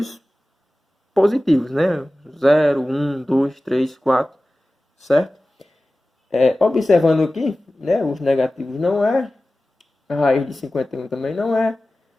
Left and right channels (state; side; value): normal; both; correlation 0.96